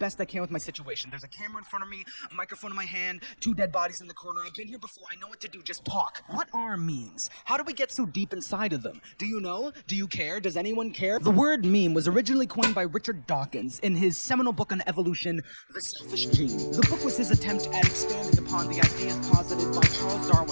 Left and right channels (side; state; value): both; inverted; correlation -1.00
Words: I can with my situation. There's a camera in front of me, a microphone in my hand, 2 dead bodies in the corner. I've been here before, I know what to do, just talk. What are memes? How do we get so deep inside of them? Do you know? Do you care? Does anyone care? The word meme was originally coined by Richard Dawkins in his seminal book on evolution, The Selfish Gene. The book was his attempt at expanding upon the ideas posited by Charles